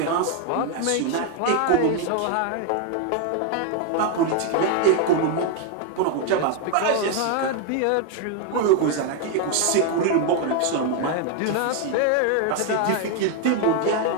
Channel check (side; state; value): both; different; correlation 0.01